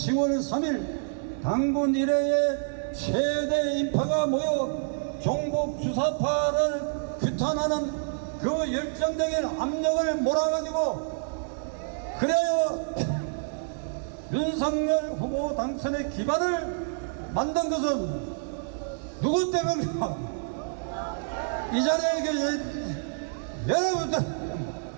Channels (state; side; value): silent; left; digital silence